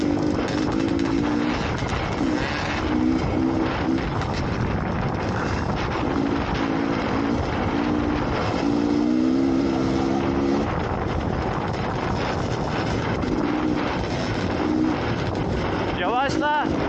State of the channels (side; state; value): both; identical; correlation 1.00